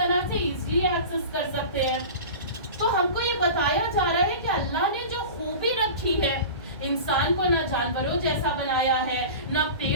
سے ایزلی ایکسس کر سکتے ہیں۔ تو ہم کو یہ بتایا جا رہا ہے کہ اللہ نے جو خوبی رکھی ہے، انسان کو نہ جانوروں جیسا بنایا ہے، نہ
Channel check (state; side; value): inverted; both; correlation -0.33